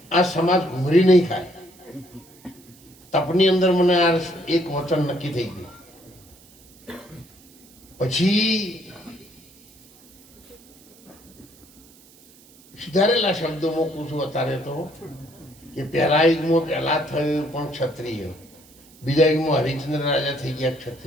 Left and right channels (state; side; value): noise; right; hiss, 26 dB below the sound